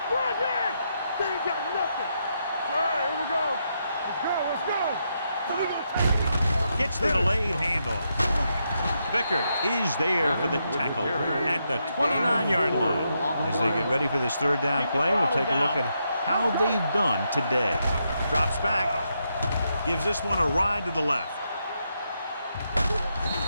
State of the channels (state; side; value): inverted; both; correlation -0.81